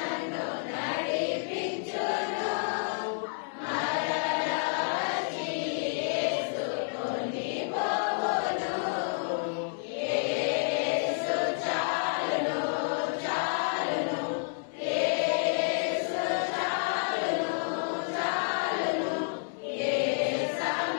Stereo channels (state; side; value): silent; right; digital silence